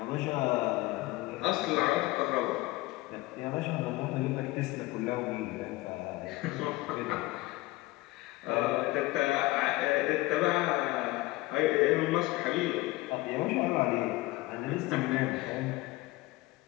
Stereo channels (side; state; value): right; quieter; 19.7 dB